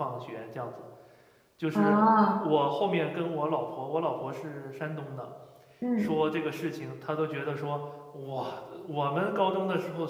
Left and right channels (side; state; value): both; identical; correlation 1.00